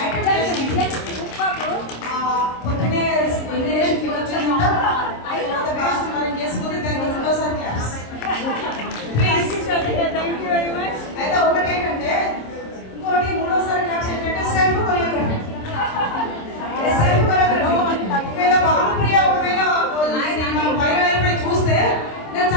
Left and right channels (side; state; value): right; late; 26 ms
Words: పొద్దునే ఇంజనీరింగ్ వచ్చిందంట మరి చేసుకుంటే దానికి రెండోసారి క్లాస్. అయితే ఒకటేంటంటే ఇంకోటి మూడోసారి క్లాస్ ఏంటంటే సెల్ఫ్ కొరియోగ్రఫీ. ఒకవేళ భానుప్రియ ఒకవేళ వైరల్ అయిపోయి చూస్తే నేను